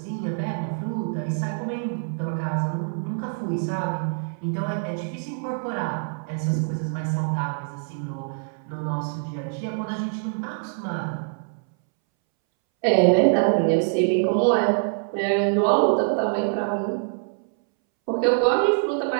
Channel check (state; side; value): silent; left; 62 dB below the other